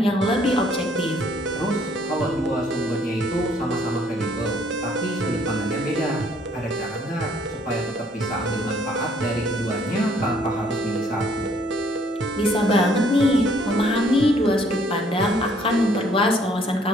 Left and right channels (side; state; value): both; normal; correlation 0.63